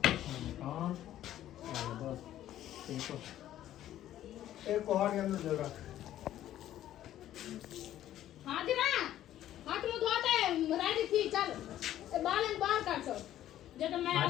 एक कोहर के अंदर जगह हाथ दिना हाथ मुंह धोते रेडी थी चल बाल बाहर काट सो जब मैं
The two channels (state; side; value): quieter; right; 12.6 dB